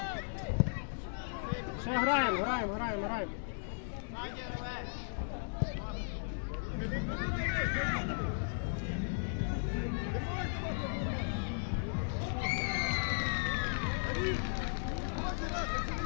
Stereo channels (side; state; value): right; silent; digital silence